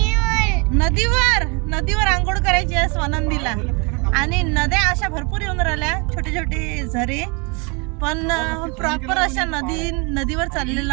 नदीवर आंघोळ करायची आहे स्वानंदीला. आणि नद्या अशा भरपूर येऊन राहिल्या, छोटे छोटे झरे. पण प्रॉपर अशा नदीवर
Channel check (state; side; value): quieter; left; 31.8 dB